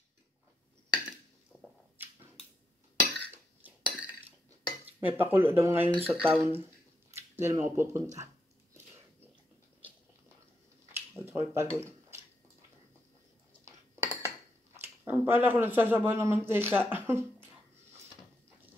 May pakulo daw ngayon sa town. Hindi naman ako pupunta. At ako'y pagod. Ang pala ko nagsasabaw ng mantika.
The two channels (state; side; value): normal; both; correlation 0.82